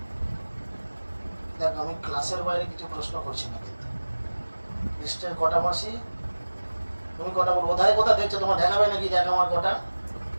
দেখ, আমি ক্লাসের বাইরে কিছু প্রশ্ন করছি না, কিন্তু কৃষ্ণের কটা মাসি? তুমি কটা বলবো? কোথায় কোথা দেখছো? তোমার দেখাবে নাকি? দেখ আমার কটা।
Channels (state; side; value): inverted; both; correlation -1.00